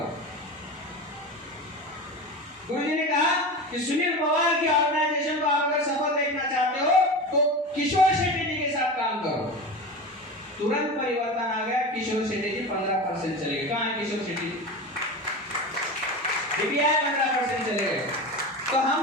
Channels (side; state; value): both; normal; correlation 0.27